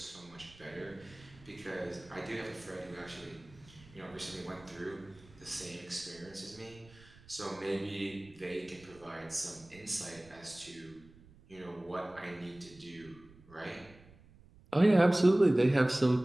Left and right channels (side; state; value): right; noise; rumble, 24 dB below the sound